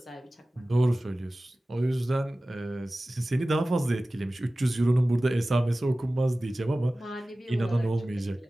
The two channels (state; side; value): normal; both; correlation 0.97